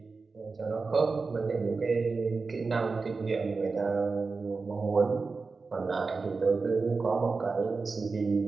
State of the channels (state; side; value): quieter; left; 4.3 dB